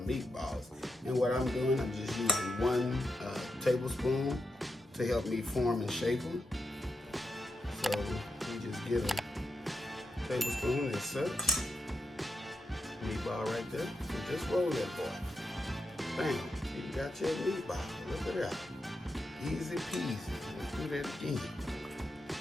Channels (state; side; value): normal; both; correlation 0.86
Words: And what I'm doing, I'm just using 1 tablespoon to help me form and shape them. So you just get a tablespoon as such. Meatball right there. And just roll that boy. Bam, you got your meatball. Look at that. Easy peasy. Let's do that again.